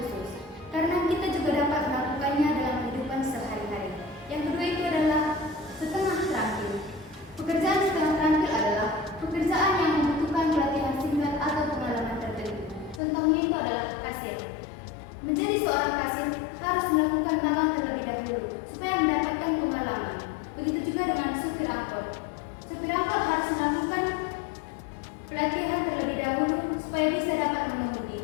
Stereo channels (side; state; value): right; drops out; at 13.0 s